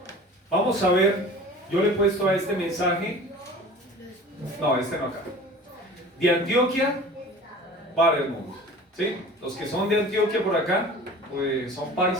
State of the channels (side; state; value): both; normal; correlation 0.41